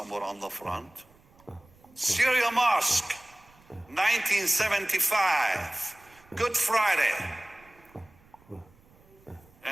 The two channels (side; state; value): right; noise; rumble, 29 dB below the sound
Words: on the front. Syria Mosque, 1975, Good Friday.